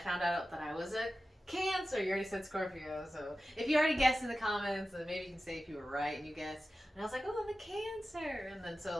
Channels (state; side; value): normal; both; correlation 0.94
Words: out that I was a Cancer. You already said Scorpio, so if you already guessed in the comments, then maybe you can say if you were right and you guessed. And I was like, oh, I'm a Cancer. And then